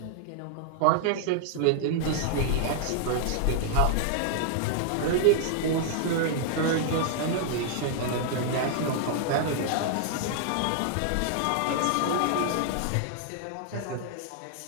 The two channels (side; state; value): both; different; correlation -0.01